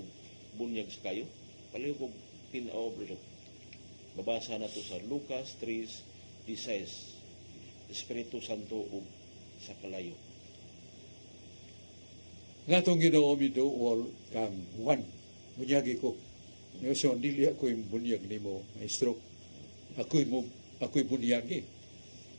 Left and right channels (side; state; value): both; inverted; correlation -1.00